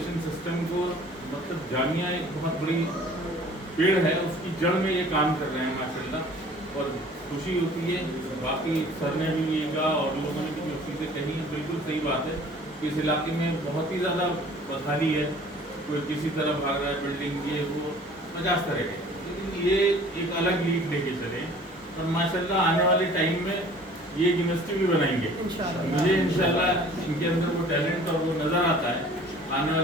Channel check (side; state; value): both; normal; correlation 0.50